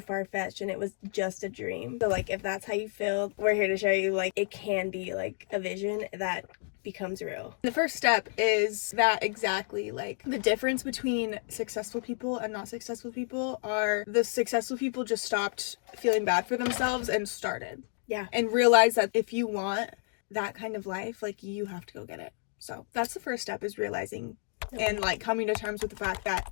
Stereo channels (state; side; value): silent; right; 57 dB below the other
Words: and it was just a dream. So if that's how you feel, we're here to show you it can be a vision that becomes real. The first step is that exactly the difference between successful people and not successful people are the successful people just stopped feeling bad for themselves and started. Yeah. And realize that if you want that kind of life, you have to go get it. So that's the first step, is realizing and coming to terms with the fact that